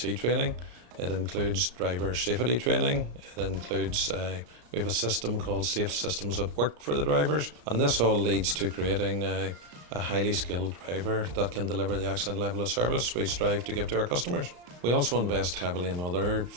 training. It includes driver safety training. It includes, we have a system called Safe Systems at Work for the drivers, and this all leads to creating a highly skilled driver that can deliver the excellent level of service we strive to give to our customers. We also invest heavily in other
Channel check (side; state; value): left; late; 34 ms